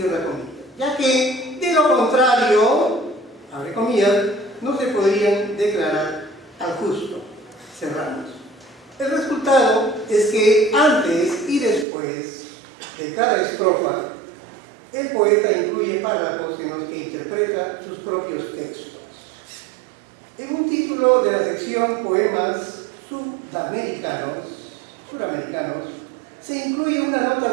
comillas, ya que de lo contrario, abre comillas, no se podrían declarar al justo, cerramos. El resultado es que antes y después de cada estrofa, el poeta incluye párrafos en los que interpreta sus propios textos. En un título de la sección Poemas Sudamericanos, se incluye una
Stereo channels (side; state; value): left; drops out; at 11.9 s